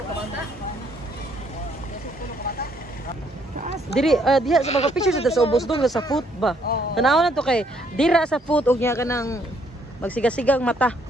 Diri diha sa mga pictures sa ubos doon sa foot ba. Tanaw na to kay dira sa foot og nya kanang magsigasigang mata.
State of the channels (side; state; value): both; normal; correlation 0.68